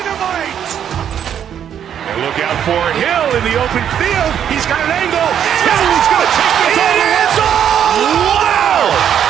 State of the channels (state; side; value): quieter; left; 9.2 dB